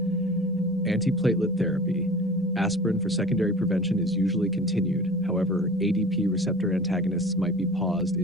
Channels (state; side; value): normal; both; correlation 0.39